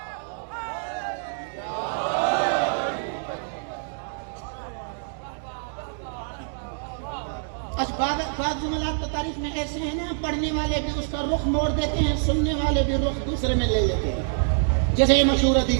بعض جملات تو تاریخ میں ایسے ہیں نا، پڑھنے والے بھی اس کا رخ موڑ دیتے ہیں، سننے والے بھی رخ دوسرے میں لے لیتے ہیں. جیسے یہ مشہور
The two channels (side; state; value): left; silent; digital silence